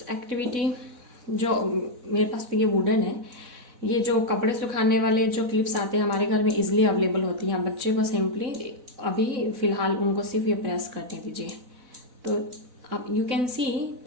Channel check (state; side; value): late; left; 4.0 ms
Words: activity, जो मेरे पास तो ये वुडन है, ये जो कपड़े सुखाने वाले जो क्लिप्स आते हैं हमारे घर में इजीली अवेलेबल होती हैं। बच्चे को सिंपली अभी फ़िलहाल उनको सिर्फ ये प्रेस करने दीजिए। तो आप यू कैन सी